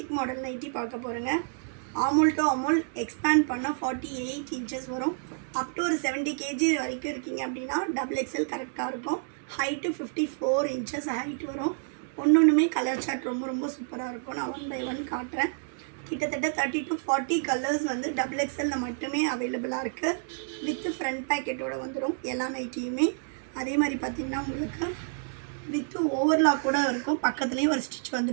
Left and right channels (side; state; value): left; silent; digital silence